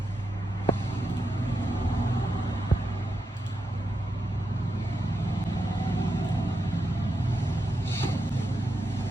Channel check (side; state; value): both; normal; correlation 0.86